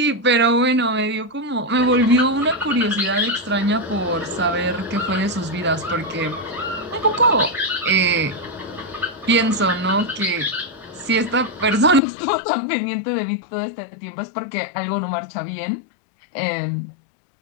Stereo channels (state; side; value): drops out; right; at 12.0 s